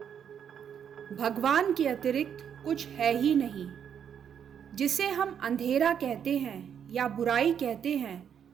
भगवान के अतिरिक्त कुछ है ही नहीं। जिसे हम अंधेरा कहते हैं या बुराई कहते हैं,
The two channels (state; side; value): quieter; left; 8.3 dB